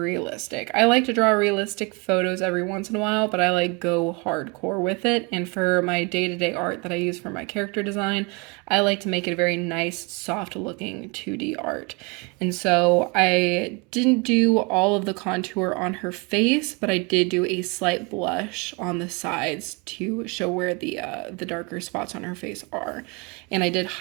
realistic. I like to draw realistic photos every once in a while, but I like go hardcore with it. And for my day-to-day art that I use for my character design, I like to make it a very nice, soft looking 2D art. And so I didn't do all of the contour on her face, but I did do a slight blush on the sides to show where the darker spots on her face are. And I did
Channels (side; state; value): left; quieter; 29.9 dB